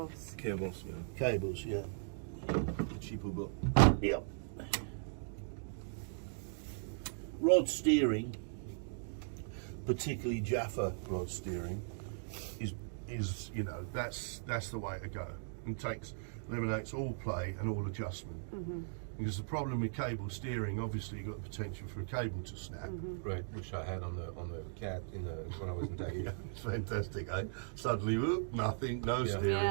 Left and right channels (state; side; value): silent; left; digital silence